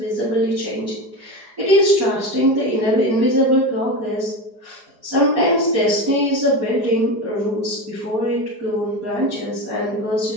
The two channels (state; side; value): late; left; 4.9 ms